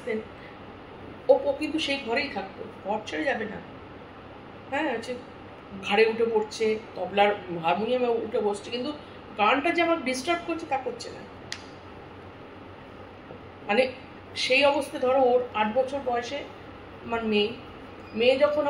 ও কিন্তু সেই ঘরেই থাকতো, ঘর ছেড়ে যাবে না। হ্যাঁ, হচ্ছে ঘাড়ে উঠে পড়ছে, তবলার হারমোনিয়ামে উঠে বসছে, কিন্তু গানটা যে আমার ডিস্টার্ব করছে তা করছে না। মানে সেই অবস্থা, ধরো ওর 8 বছর বয়সে আমার মেয়ে যখন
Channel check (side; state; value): both; identical; correlation 1.00